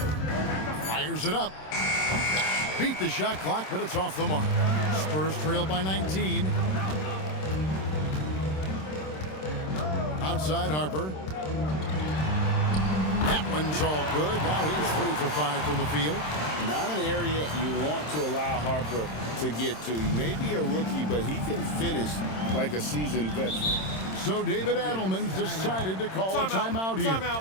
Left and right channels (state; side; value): late; right; 26 ms